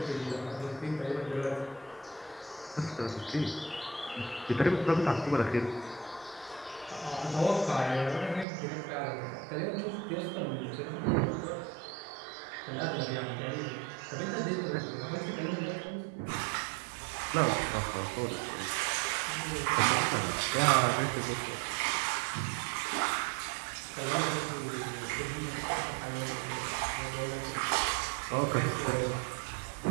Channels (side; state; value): left; drops out; at 8.5 s